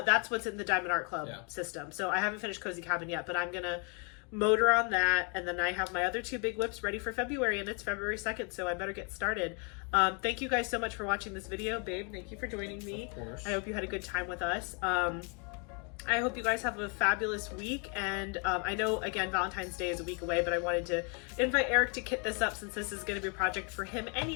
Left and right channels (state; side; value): quieter; right; 36.0 dB